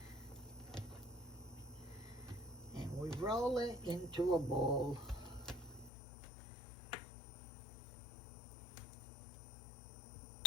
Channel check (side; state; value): right; drops out; at 5.9 s